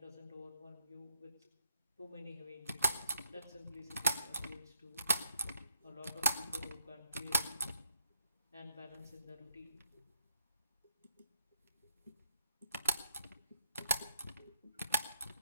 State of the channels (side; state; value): both; inverted; correlation -0.77